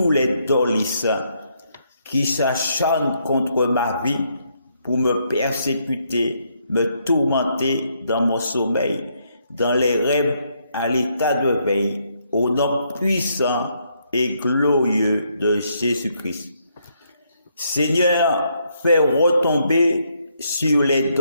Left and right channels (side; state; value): both; inverted; correlation -0.74